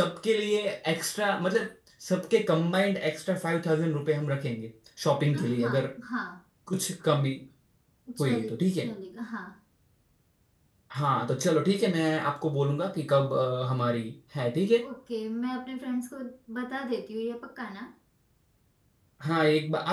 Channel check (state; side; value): identical; both; correlation 1.00